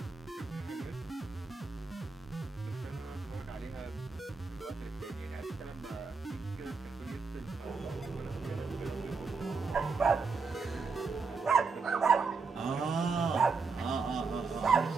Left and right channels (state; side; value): quieter; left; 4.6 dB